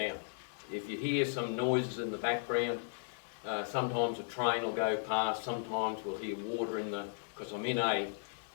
if you hear some noises in the background, sometimes a train will go past, sometimes we'll hear water in the, because I'm in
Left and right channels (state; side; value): silent; right; digital silence